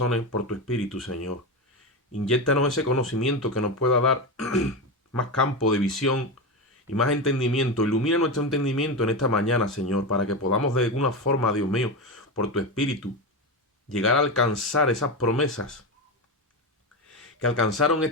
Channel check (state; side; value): normal; both; correlation 0.17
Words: por tu Espíritu, Señor. Inyéctanos ese conocimiento que nos pueda dar más campo de visión y más entendimiento. Ilumina nuestro entendimiento en esta mañana, Señor, para que podamos de alguna forma, Dios mío, por tu Espíritu, llegar a alcanzar esas promesas que alcanzaron